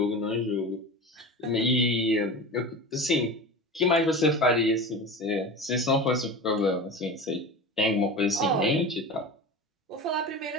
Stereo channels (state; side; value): normal; both; correlation 0.30